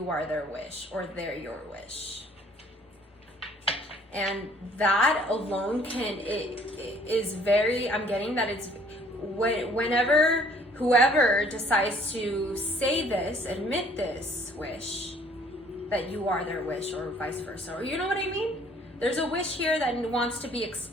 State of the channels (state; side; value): normal; both; correlation 0.58